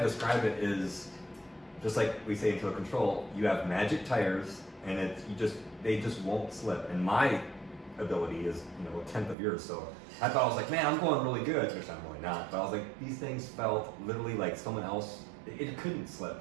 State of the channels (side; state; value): left; drops out; at 9.3 s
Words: describe it is just like we say in Total Control, you have magic tires, and they just won't slip. And my ability is a tenth of yours, so I thought, I was like, man, I'm going really good, which I'm really not, but I was like, these things felt literally like someone else, it couldn't slip.